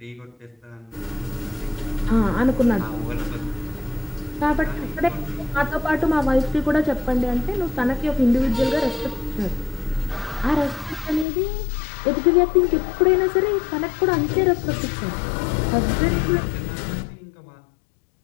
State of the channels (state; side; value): drops out; right; at 11.2 s